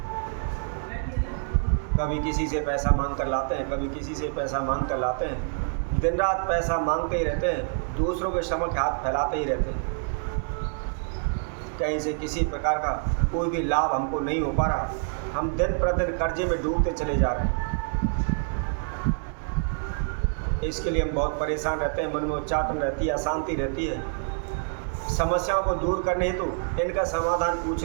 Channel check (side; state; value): left; silent; 60 dB below the other